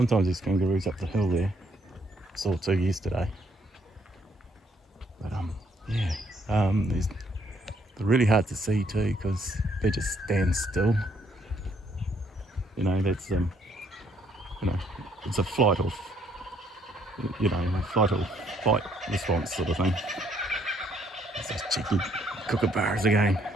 there's kangaroos up the hill there. Saw two yesterday. But yeah, they're really hard to see too, because they just stand still. You know, that's you know, it's a flight or fight response sort of thing. It's those cheeky kookaburras again,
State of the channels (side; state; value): both; normal; correlation 0.68